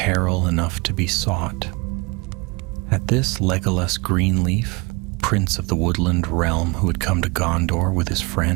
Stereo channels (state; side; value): quieter; left; 27.5 dB